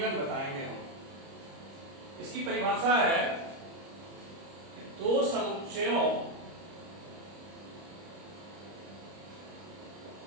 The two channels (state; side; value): late; left; 30 ms